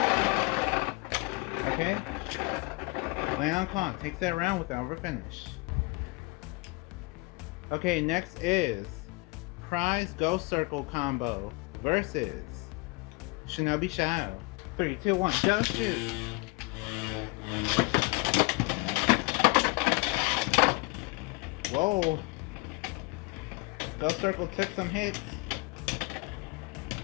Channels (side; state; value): right; quieter; 27.0 dB